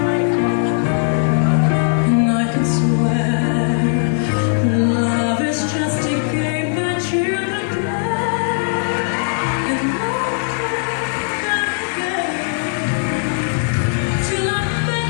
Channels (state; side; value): silent; right; digital silence